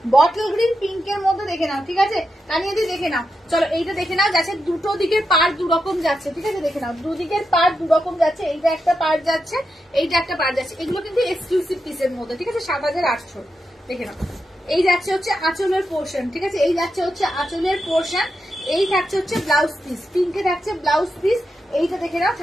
বটল গ্রিন পিঙ্কের মধ্যে, দেখে নাও, ঠিক আছে? তানিয়াদি দেখে নাও। চলো এইটা দেখে নাও যাচ্ছে দুটো দিকের পার দুরকম যাচ্ছে, ঠিক আছে? দেখে নাও দুদিকের পার দুরকম যাচ্ছে, এইটা একটা পার যাচ্ছে, এইটা একটা পার যাচ্ছে, এগুলো কিন্তু এক্সক্লুসিভ পিসের মধ্যে, ঠিক আছে? 7800 দেখে নাও। এই যাচ্ছে হচ্ছে আঁচলের পোর্শন, ঠিক আছে, এই যাচ্ছে হচ্ছে আঁচলের পোর্শন, এই থাকছে হচ্ছে ব্লাউজ পিস, পিঙ্কে থাকছে ব্লাউজ পিস, এইটা দেখে নাও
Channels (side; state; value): both; normal; correlation 0.87